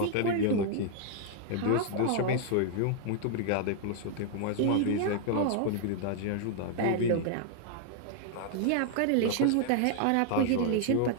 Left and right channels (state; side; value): different; both; correlation 0.00